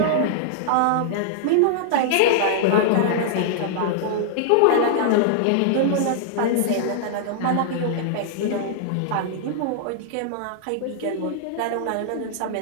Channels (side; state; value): both; different; correlation -0.01